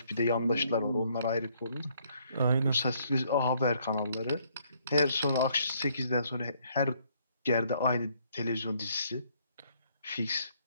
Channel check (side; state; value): both; inverted; correlation -0.68